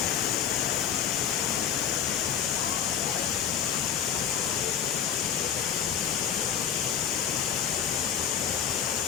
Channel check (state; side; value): quieter; right; 8.5 dB